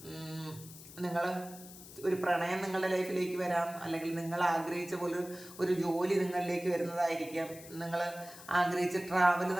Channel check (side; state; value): left; noise; hiss, 17 dB below the sound